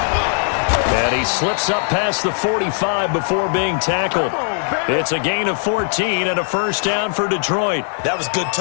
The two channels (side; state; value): right; silent; digital silence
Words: And he slips up past the 45 before being tackled. It's a gain of 14 and a first down for Detroit. That was good,